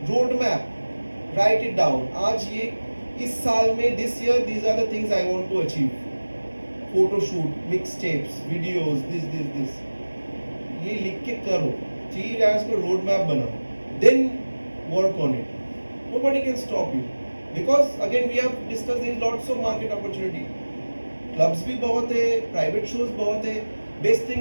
Road map, write it down. आज ये इस साल में this year these are the things I want to achieve. Photo shoot, mix tapes, videos, this ये लिख के करो, 3 years को रोड मैप बनाओ, then work on it. Nobody can stop you, because again we have discuss there is lots of market opportunity. Clubs भी बहुत है, private shows बहुत है। बेस्ट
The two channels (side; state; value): both; inverted; correlation -1.00